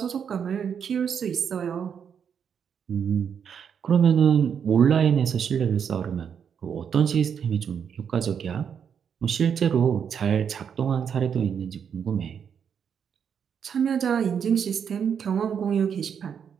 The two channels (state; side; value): quieter; left; 7.6 dB